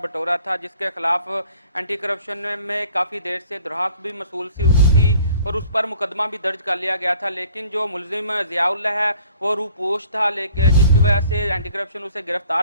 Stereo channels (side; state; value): both; inverted; correlation -0.54